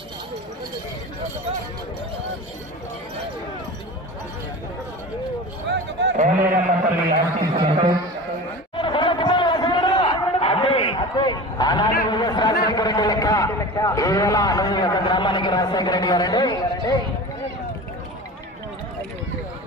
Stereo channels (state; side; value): normal; both; correlation 0.33